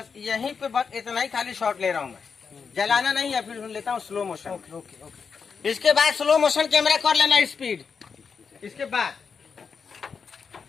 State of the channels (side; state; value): right; quieter; 5.8 dB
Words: यहीं पे बस इतना ही खाली शॉट ले रहा हूँ मैं, जलाना नहीं है, फिर लेता हूँ स्लो मोशन। इसके बाद स्लो मोशन कैमरा कर लेना स्पीड। इसके बाद